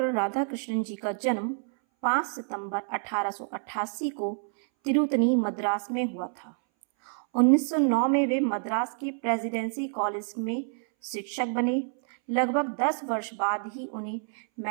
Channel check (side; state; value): left; silent; 59 dB below the other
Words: राधाकृष्णन जी का जन्म 5 सितंबर 1888 को तिरुतनी मद्रास में हुआ था। 1909 में वे मद्रास के प्रेसिडेंसी कॉलेज में शिक्षक बने। लगभग 10 वर्ष बाद ही उन्हें